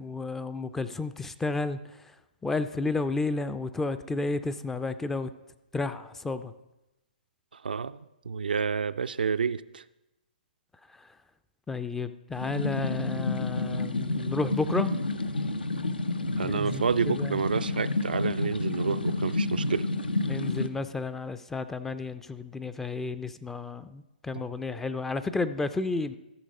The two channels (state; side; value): normal; both; correlation -0.16